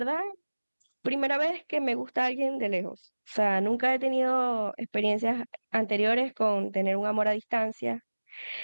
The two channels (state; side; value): inverted; both; correlation -1.00